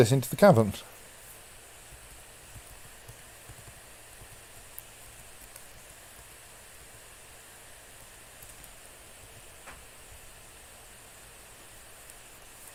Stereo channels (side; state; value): both; identical; correlation 1.00